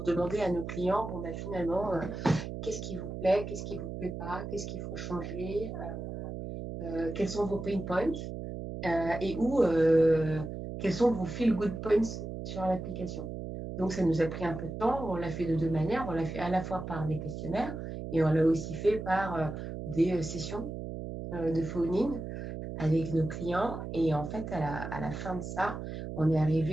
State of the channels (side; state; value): right; noise; hum, 7 dB below the sound